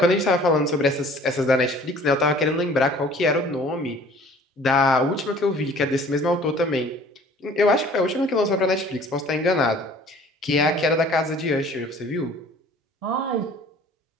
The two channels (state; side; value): normal; both; correlation 0.51